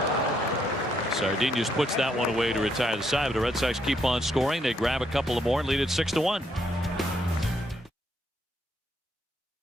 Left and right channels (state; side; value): normal; both; correlation 0.74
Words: Sardinius puts that one away to retire the side, but the Red Sox keep on scoring. They grab a couple of more and lead it 6-1.